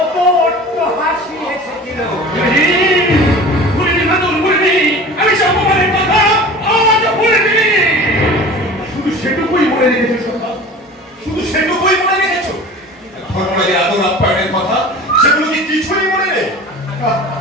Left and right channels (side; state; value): both; normal; correlation 0.39